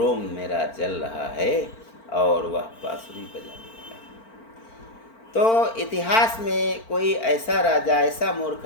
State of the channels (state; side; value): late; right; 4.4 ms